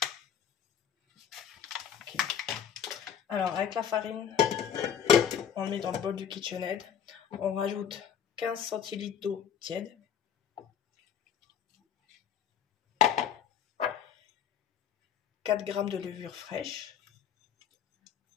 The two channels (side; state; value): right; quieter; 8.4 dB